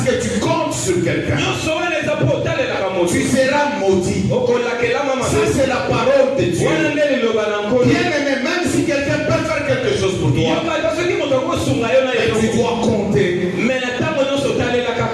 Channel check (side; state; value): both; identical; correlation 1.00